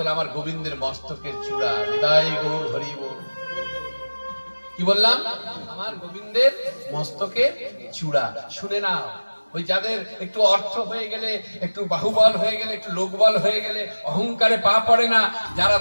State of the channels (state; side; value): inverted; both; correlation -1.00